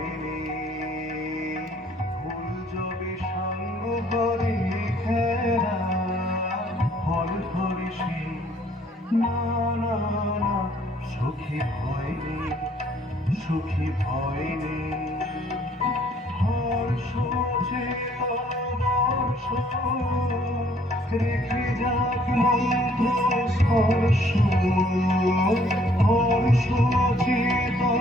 নেই, ফুল যবে সাঙ্গ করে খেলা ফল ধরে সে। না না না সখী ভয় নেই, সখী ভয় নেই, হর্ষ বর্ষ রেখে যাক মন্ত্র স্পর্শ, হর্ষ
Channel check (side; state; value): both; normal; correlation 0.62